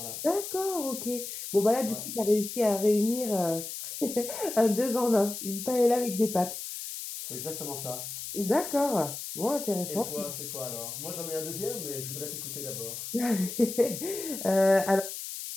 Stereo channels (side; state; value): left; noise; hiss, 8 dB below the sound